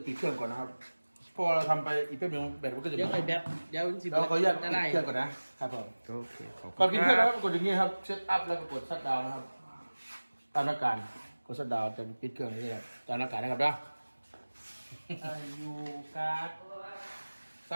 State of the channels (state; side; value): inverted; both; correlation -1.00